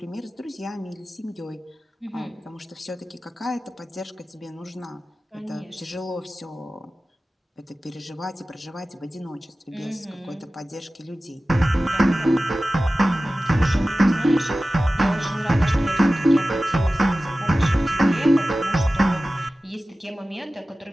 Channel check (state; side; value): normal; both; correlation 0.96